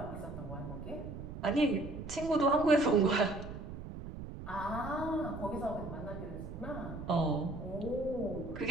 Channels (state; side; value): noise; right; rumble, 9 dB below the sound